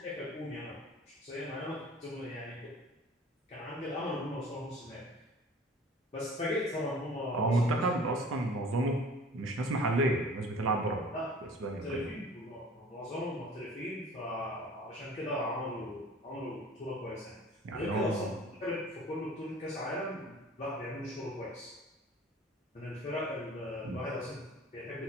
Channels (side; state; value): both; normal; correlation 0.46